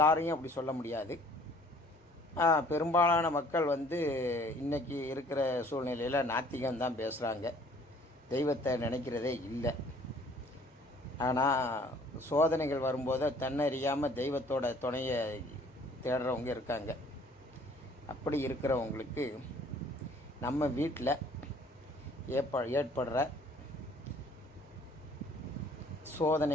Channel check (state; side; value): normal; both; correlation 0.56